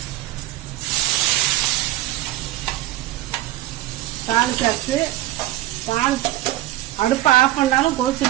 தாளிச்சாச்சு. அடுப்பை ஆஃப் பண்ணாலும்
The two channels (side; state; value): left; quieter; 15.5 dB